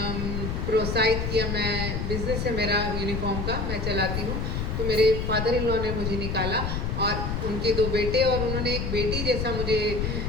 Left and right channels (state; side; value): noise; left; rumble, 2 dB below the sound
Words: प्रोत्साहित किया, मैं बिज़नेस है मेरा यूनिफॉर्म का, मैं चलाती हूँ, तो मेरे फादर इन लॉ ने मुझे निकाला और उनके 2 बेटे और उन्होंने एक बेटी जैसा मुझे